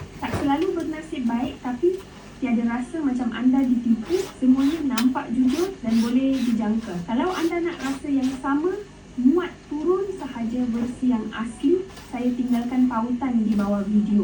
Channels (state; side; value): identical; both; correlation 1.00